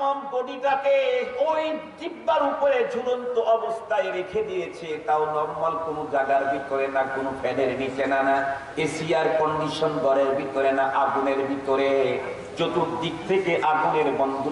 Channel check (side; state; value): both; identical; correlation 1.00